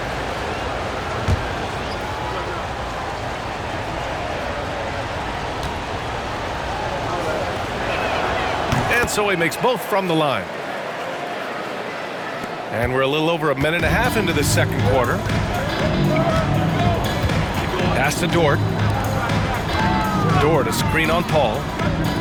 And so he makes both from the line. And we're a little over 1.5 minutes into the second quarter. Pass to Dort. Dort, a screen on Paul.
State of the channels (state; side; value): identical; both; correlation 1.00